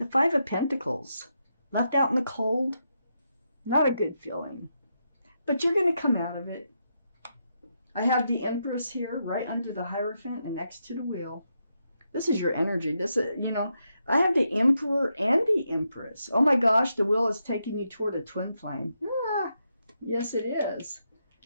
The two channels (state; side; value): inverted; both; correlation -0.82